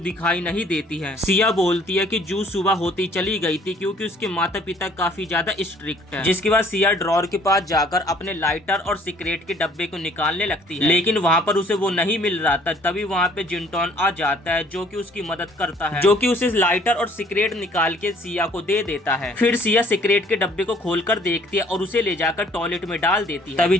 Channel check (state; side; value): normal; both; correlation 0.58